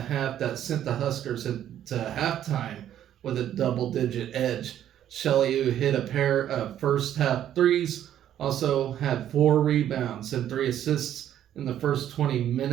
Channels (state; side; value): quieter; left; 11.0 dB